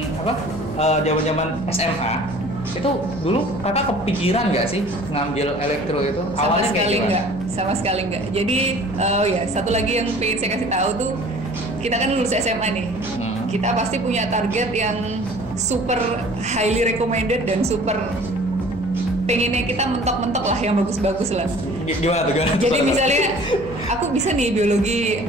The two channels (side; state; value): left; noise; hum, 14 dB below the sound